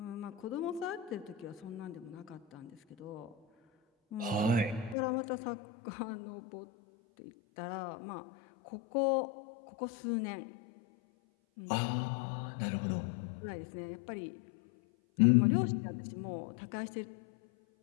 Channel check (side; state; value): right; drops out; at 5.0 s